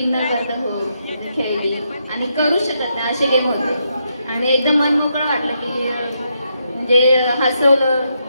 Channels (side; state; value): both; inverted; correlation -0.80